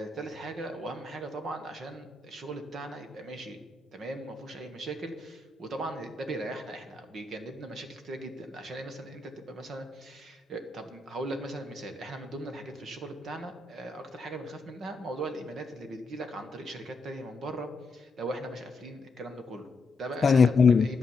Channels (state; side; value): quieter; right; 3.5 dB